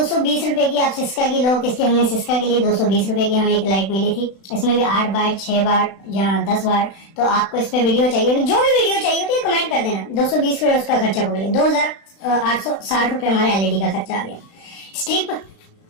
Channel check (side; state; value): right; late; 36 ms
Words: रुपए की। आप सिस्का की लो, किसकी हमने सिस्का के लिए 220 रुपए की हमें एक लाइट मिली थी। इसमें भी 8 वाट 6 वाट या 10 वाट। तो आपको इस पे वीडियो चाहिए, जो भी वीडियो चाहिए होती है कमेंट कर देना। 220 रुपए उसका खर्चा पकड़िए। 2860 रुपए हमारे एलईडी का खर्चा आ गया। स्ट्रिप